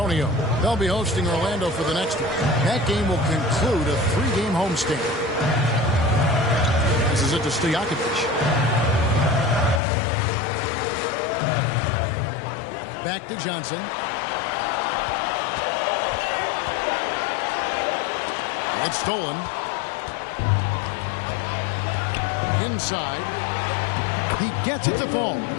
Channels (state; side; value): drops out; right; at 9.8 s